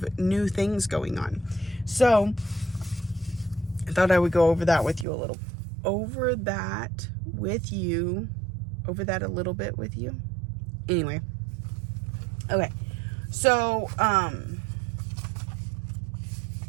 new things going on. So I thought I would go over that with you a little. Over that a little bit with you. Anyway. Okay. So, let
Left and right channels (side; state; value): left; drops out; at 5.1 s